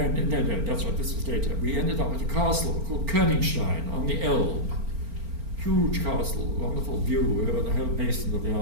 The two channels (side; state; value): left; late; 4.4 ms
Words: that's right, this was later. We ended up at a castle called Königstein on the Elbe. Huge castle, wonderful view over the whole basin of the